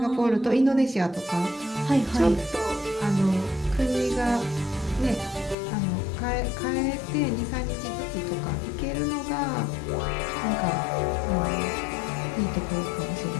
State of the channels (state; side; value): drops out; right; at 5.6 s